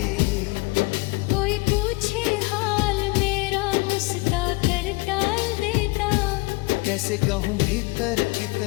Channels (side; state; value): right; quieter; 24.1 dB